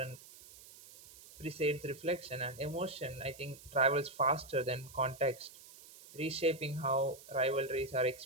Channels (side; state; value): right; noise; hiss, 19 dB below the sound